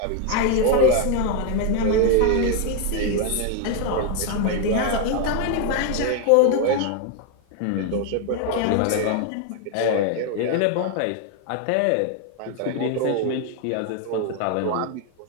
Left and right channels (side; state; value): both; different; correlation 0.01